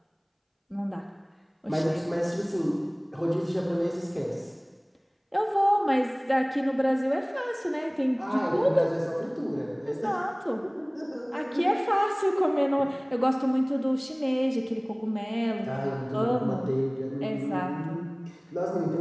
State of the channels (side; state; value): both; identical; correlation 1.00